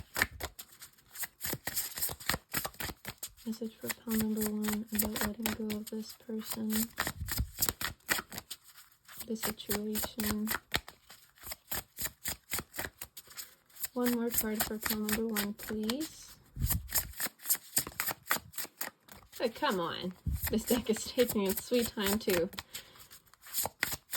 Message for pile number 1 about letting go of this person, the situation. One more card for pile number 1, please. Oh, come on. This deck is taking its sweet time, too.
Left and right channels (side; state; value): both; identical; correlation 1.00